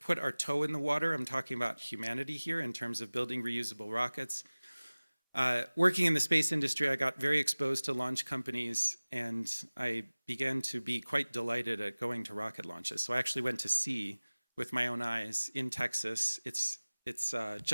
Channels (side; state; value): both; inverted; correlation -1.00